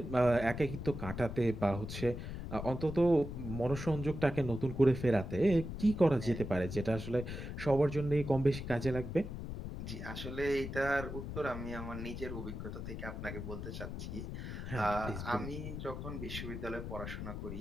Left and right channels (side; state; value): left; noise; rumble, 7 dB below the sound